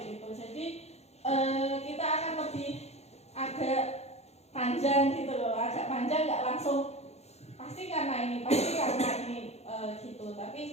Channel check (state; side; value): late; right; 0.31 ms